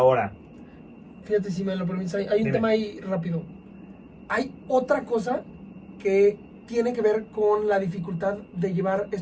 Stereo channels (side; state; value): both; identical; correlation 1.00